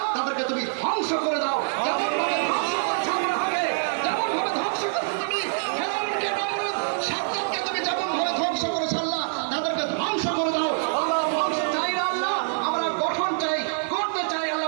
তাদেরকে তুমি ধ্বংস করে দাও। যেমন ভাবে ধ্বংস করছো আল্লাহকে, যেমন ভাবে ধ্বংস করছো তুমি ফেরাউনকে, নমরুদ, সাদ্দাতকে তুমি যেমন ভাবে ধ্বংস করেছো আল্লাহ, তাদেরকে ধ্বংস করে দাও আল্লাহ। ধ্বংস চাই না আল্লাহ, আমরা গঠন চাই, করতে চাই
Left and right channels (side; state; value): left; silent; 61 dB below the other